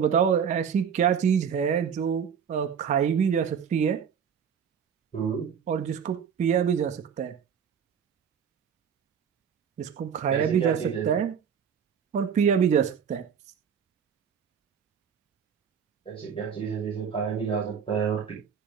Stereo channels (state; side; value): quieter; left; 7.4 dB